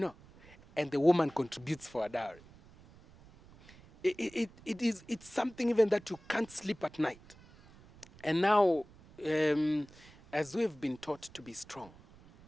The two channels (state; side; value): noise; right; rumble, 23 dB below the sound